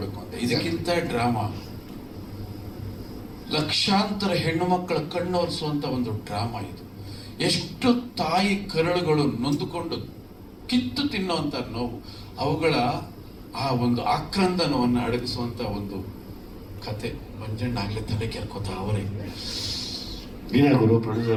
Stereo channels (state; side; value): identical; both; correlation 1.00